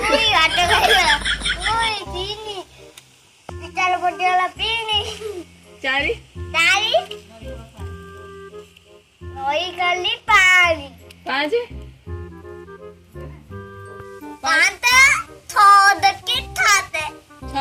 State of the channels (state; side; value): identical; both; correlation 1.00